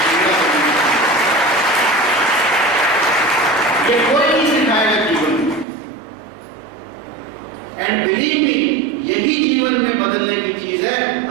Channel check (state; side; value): drops out; left; at 5.7 s